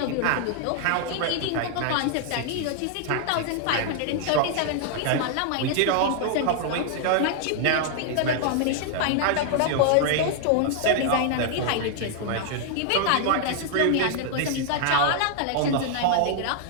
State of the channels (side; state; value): both; different; correlation 0.00